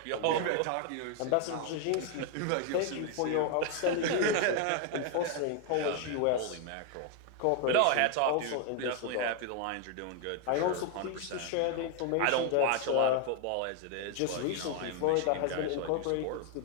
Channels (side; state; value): both; different; correlation 0.00